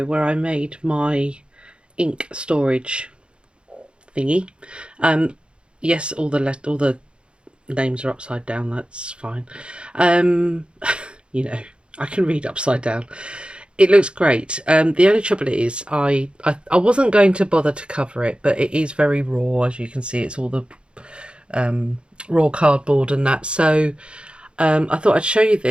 where I made my ink storage thingy. Yes, all the names are upside down. That's fine. You know, I can read upside down. It looks great. The only trouble is I wasn't going to bother to cover it, but it is very raw, as you can see. It's all the raw cardboard and that. So I thought I'd show you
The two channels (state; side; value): late; left; 0.055 ms